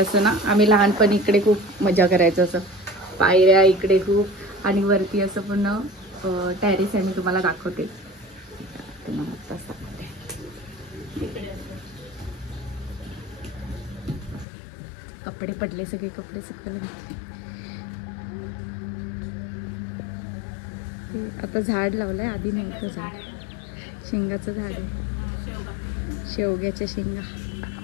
ना आम्ही लहानपणी इकडे खूप मजा करायचं. असं पायऱ्या इकडे खूप आणि वरती असं पूर्ण टेरेस आहे. मी तुम्हाला दाखवते. कपडे पडले. सगळे कपडे सुकवले. आता झाड लावलंय. आधी नव्हतं झाड. शेंगाचं झाड आहे. शेवग्याच्या शेंगा.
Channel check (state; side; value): drops out; right; at 14.5 s